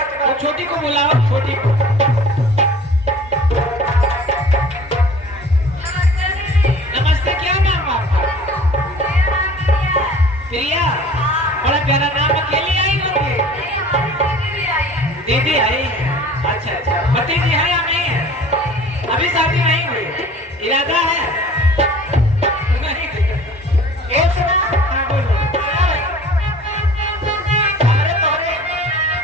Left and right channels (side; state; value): both; normal; correlation 0.46